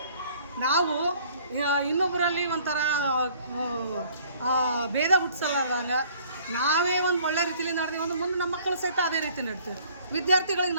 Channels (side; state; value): both; inverted; correlation -0.56